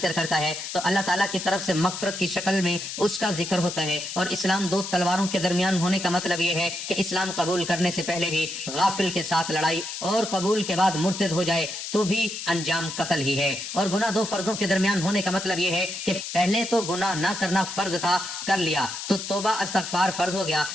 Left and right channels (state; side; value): noise; left; hiss, 7 dB below the sound